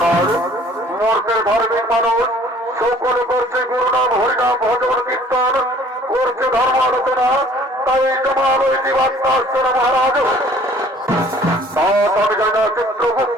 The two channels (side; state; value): both; normal; correlation 0.54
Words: মর্তের ধার্মিক মানুষ সকলে করছে গুরুনাম হরিনাম ভজন কীর্তন, করছে ধর্ম আলোচনা, তাই তোমার আলোয় বার্তা আসছে না মহারাজ। আমি জানি না